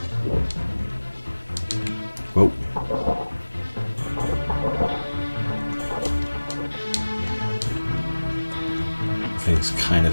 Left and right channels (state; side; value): inverted; both; correlation -1.00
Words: Whoa. Everything's kind